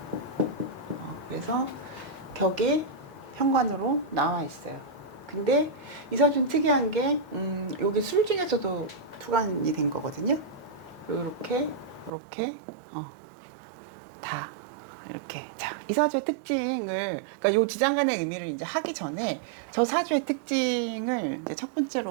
그래서 격이 현관으로 나와 있어요. 근데 이 사주는 특이한 게 여기 술 중에서도 투관이 된 거거든요. 이렇게 다 이렇게. 자, 이 사주의 특징을, 그러니까 요 지장간의 의미를 이제 하기 전에 저 사주의 특징을 이제 첫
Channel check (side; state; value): left; drops out; at 12.1 s